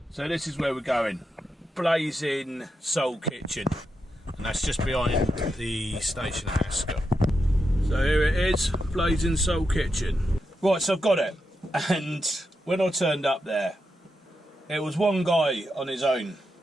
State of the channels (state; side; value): normal; both; correlation 0.86